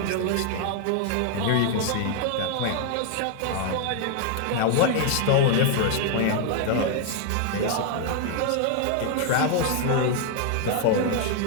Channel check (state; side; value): different; both; correlation 0.00